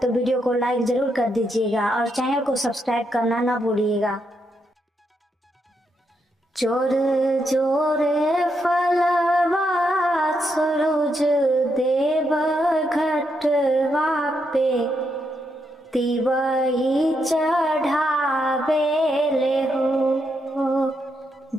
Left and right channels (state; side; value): normal; both; correlation 0.80